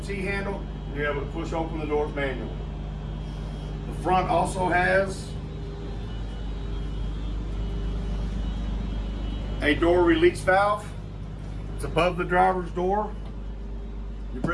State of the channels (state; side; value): identical; both; correlation 1.00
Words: T-handle, and you're able to push open the doors manually. The front also has a door release valve. It's above the driver's door. You